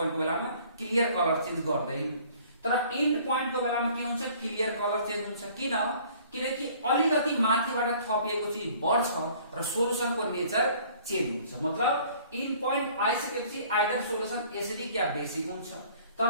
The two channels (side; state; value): both; inverted; correlation -0.54